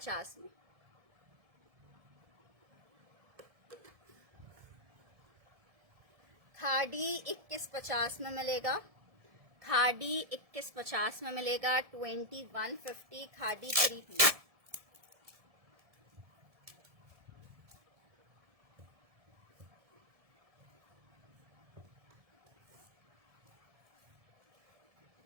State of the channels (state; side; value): late; left; 1.7 ms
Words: में। खादी 21.50 में मिलेगा, खादी 21.50 में मिलेगा। 2150 खादी 3 पीस।